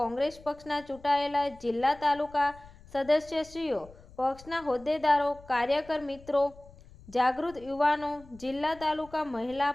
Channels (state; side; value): noise; left; rumble, 22 dB below the sound